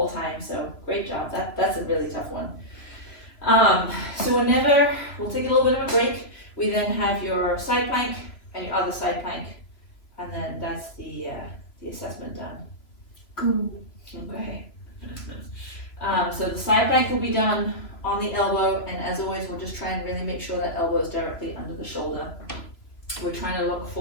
time. So great job. That's a really tough one. So whenever, we'll take a little bit of a break. We then have your side plank and your other side plank, and then that's the assessment done. Cool. Okay. So the side plank will be done on the elbow, and as always, we'll just try and really make sure that elbow is directly under the shoulder. We're trying to look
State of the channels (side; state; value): right; late; 3.0 ms